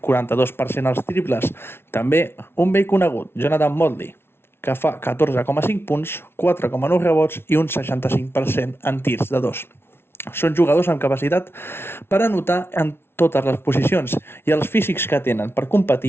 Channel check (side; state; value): right; late; 0.12 ms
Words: als triples. També un vell conegut, Jonathan Motley, que fa 14,5 punts, 4,9 rebots i un 65% en tirs de dos. Són jugadors amb capacitat per anotar en totes les posicions i els físics que tenen per